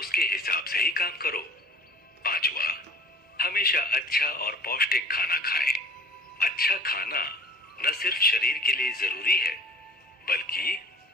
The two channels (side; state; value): both; normal; correlation 0.46